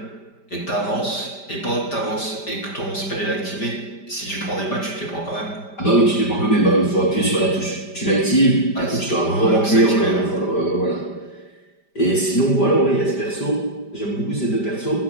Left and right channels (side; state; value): right; late; 5.1 ms